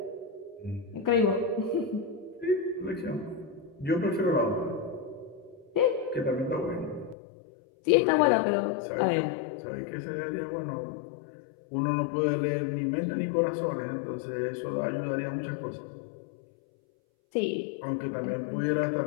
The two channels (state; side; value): drops out; right; at 7.2 s